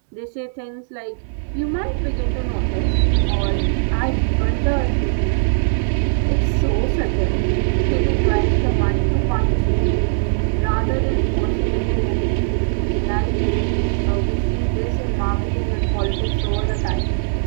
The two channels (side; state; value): left; silent; digital silence